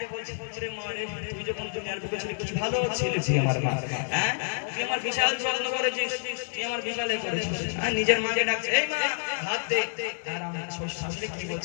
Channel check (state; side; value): silent; right; 57 dB below the other